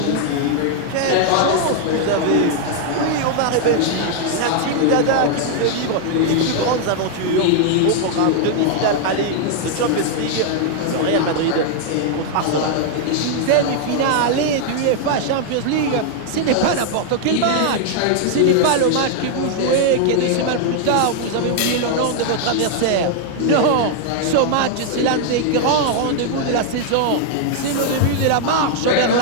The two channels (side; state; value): both; different; correlation 0.00